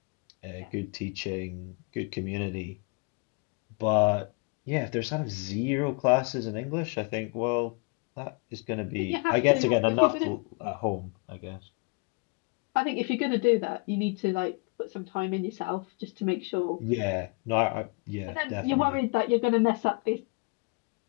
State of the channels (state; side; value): quieter; right; 31.9 dB